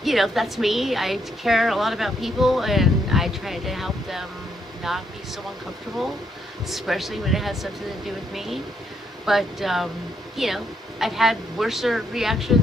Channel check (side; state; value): both; normal; correlation 0.75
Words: you know, that's me. I care a lot about people, and I try to help them not be so uncomfortable, especially when it has something to do with me. But you know, I've had worse